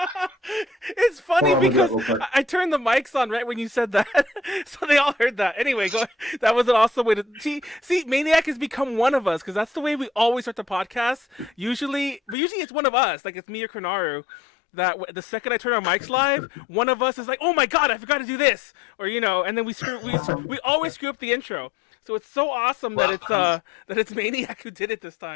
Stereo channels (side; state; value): right; drops out; at 12.4 s